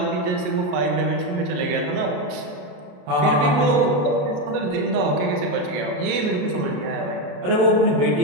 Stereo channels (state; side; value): late; left; 27 ms